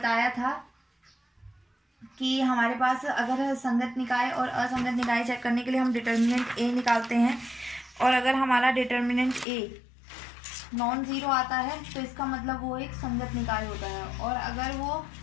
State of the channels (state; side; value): drops out; right; at 9.5 s